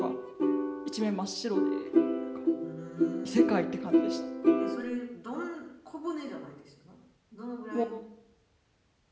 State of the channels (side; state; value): both; identical; correlation 1.00